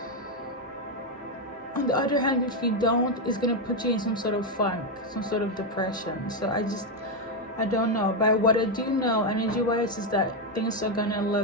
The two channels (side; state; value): both; normal; correlation 0.04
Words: on the other hand, if you don't, it's gonna put you in some sort of funk, some sort of depression. So I don't know. But what I do know, energy wise, is that things are gonna